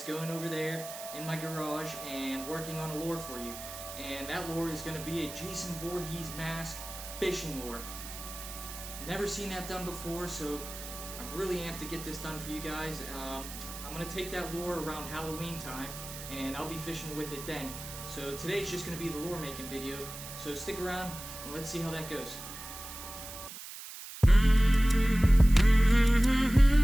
going over there in my garage and working on a lure for you. And that lure is going to be a Jason Voorhees mask fishing lure. Never seen that done before, so I'm really amped to get this done for you guys. I'm going to take that lure around Halloween time, and I'll be fishing with it then. So today's just going to be the lure making video, so stick around and let's see how that goes.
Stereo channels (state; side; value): noise; right; hiss, 11 dB below the sound